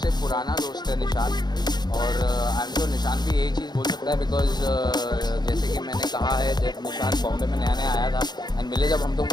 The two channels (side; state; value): right; late; 0.20 ms